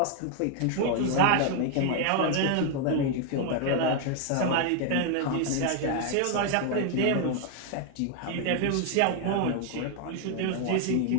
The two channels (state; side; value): different; both; correlation 0.01